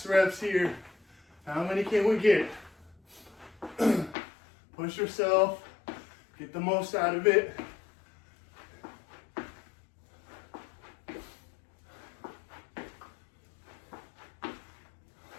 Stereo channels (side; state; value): right; drops out; at 4.2 s